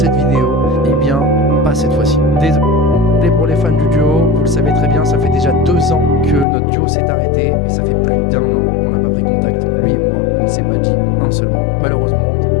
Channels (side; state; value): right; drops out; at 6.5 s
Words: vidéo? Eh bien, pas cette fois-ci. Désolé pour les fans du duo, vous le savez très bien, ça fait déjà 2 ans que notre duo s'est arrêté, et ça fait plus d'1 an qu'on n'a pas pris contact, lui et moi, on ne s'est pas dit un seul mot. Malheureusement.